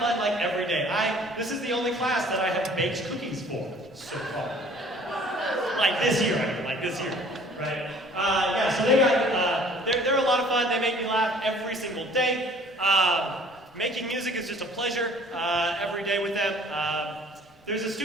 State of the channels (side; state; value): both; normal; correlation 0.53